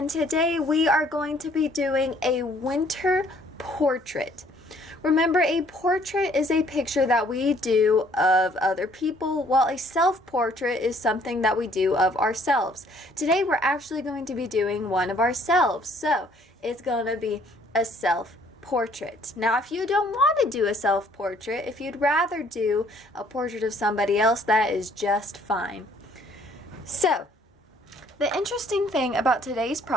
today we are going to be doing a winter portrait. Remember, a portrait is a picture that we do of other people, while a self-portrait is something that we do of ourselves. Today we're actually going to be doing one of ourselves, so it's going to be a self-portrait. Now, if you don't want to do a self-portrait, if you'd rather do a portrait of somebody else, that is just fine. So, the interesting thing about today's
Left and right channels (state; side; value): normal; both; correlation 0.61